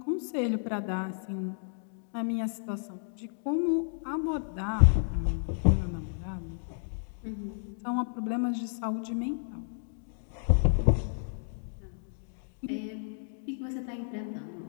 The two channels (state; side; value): silent; right; digital silence